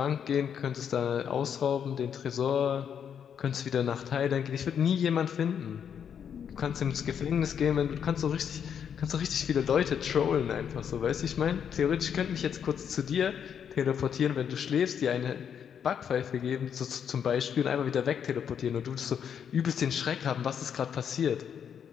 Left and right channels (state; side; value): quieter; right; 8.0 dB